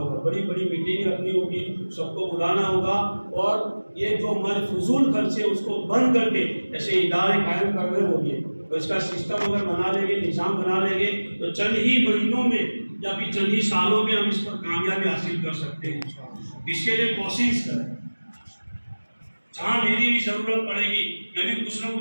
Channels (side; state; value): both; inverted; correlation -1.00